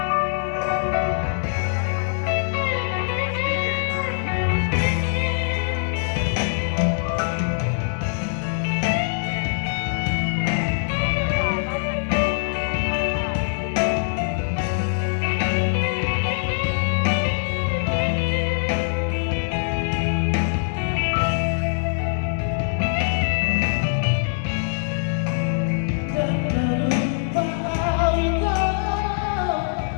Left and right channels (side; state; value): right; silent; digital silence